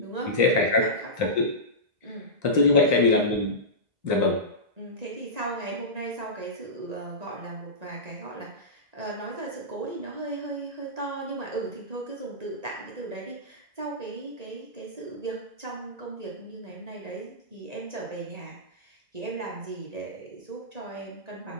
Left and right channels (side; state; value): left; late; 1.8 ms